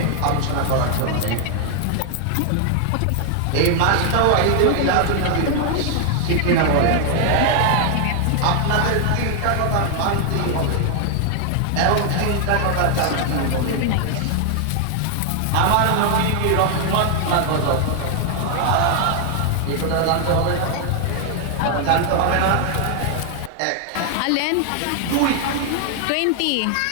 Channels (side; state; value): both; different; correlation 0.00